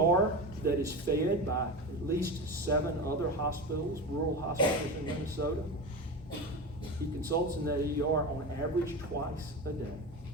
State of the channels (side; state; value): both; normal; correlation 0.24